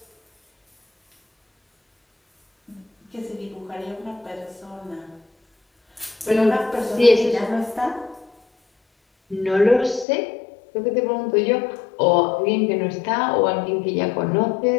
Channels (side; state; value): right; drops out; at 10.1 s